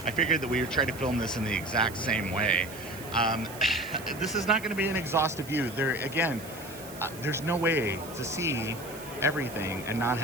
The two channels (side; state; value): right; noise; hiss, 16 dB below the sound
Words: I figured that we would try to film this in the exact same way. This is not going to be an exhaustive view. There, again, there's no way to see everything and not